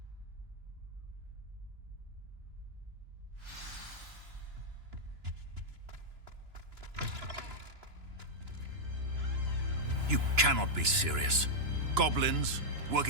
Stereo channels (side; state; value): left; late; 2.9 ms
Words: You cannot be serious. Goblins